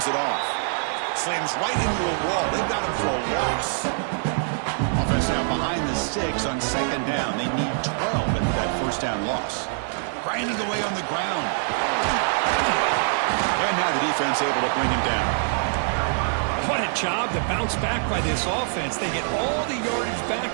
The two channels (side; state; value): left; silent; 62 dB below the other